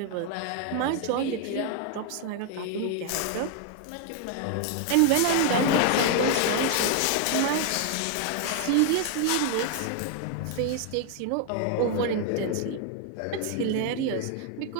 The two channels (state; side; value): different; both; correlation 0.00